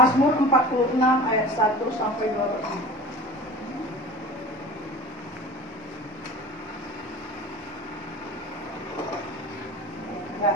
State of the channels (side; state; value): both; normal; correlation 0.37